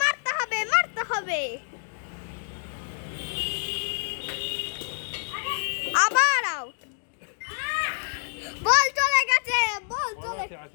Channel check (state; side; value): silent; right; digital silence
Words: মারতে হবে আবার আউট বল চলে গেছে বল বল চলে